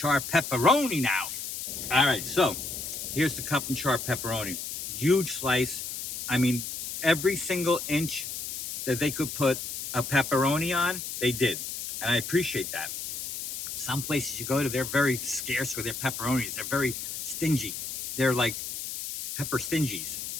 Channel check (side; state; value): left; noise; hiss, 6 dB below the sound